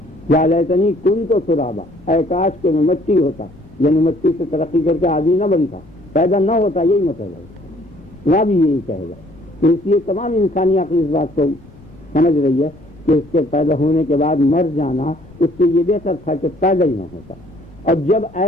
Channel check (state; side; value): noise; left; rumble, 27 dB below the sound